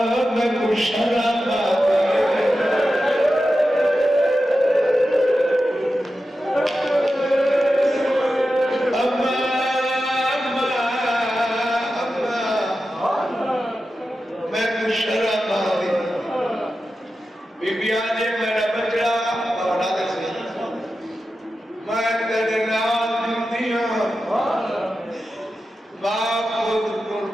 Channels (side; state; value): both; normal; correlation 0.92